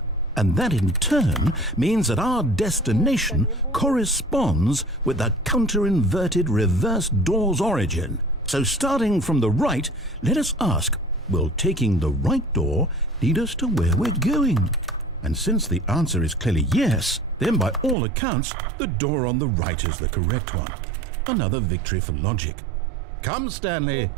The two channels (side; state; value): left; drops out; at 17.9 s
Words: And that in turn means that our destination corresponds with the counter-inverted reverse door's origin. So starting from the right, let us ask, will taking the right door lead us to where we're going? And since the answer is clearly yes, then by all accounts, the door on the right is the correct one. Another victory for logic. Come, Stanley,